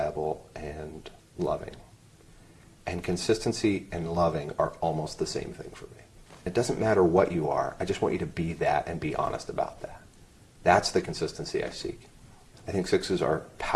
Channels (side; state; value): both; identical; correlation 1.00